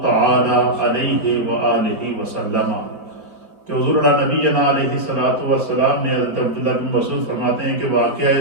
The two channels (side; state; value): left; late; 4.7 ms